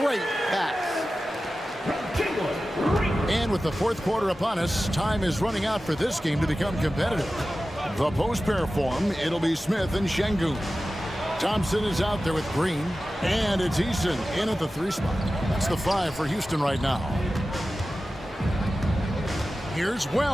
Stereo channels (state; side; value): normal; both; correlation 0.94